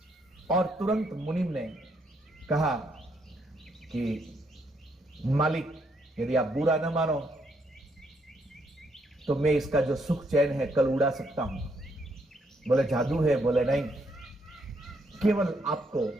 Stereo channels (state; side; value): normal; both; correlation 0.74